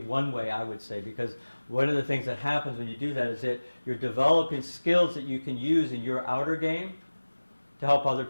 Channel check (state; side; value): inverted; both; correlation -1.00